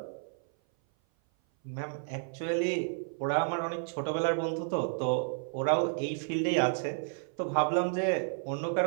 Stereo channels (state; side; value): silent; left; 56 dB below the other